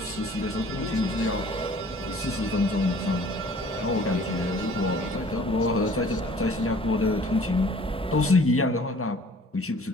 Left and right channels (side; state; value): both; normal; correlation 0.52